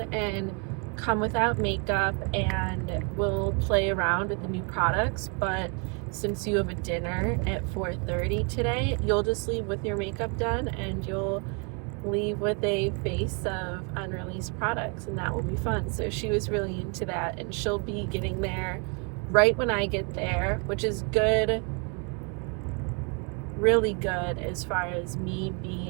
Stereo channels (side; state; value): left; quieter; 34.9 dB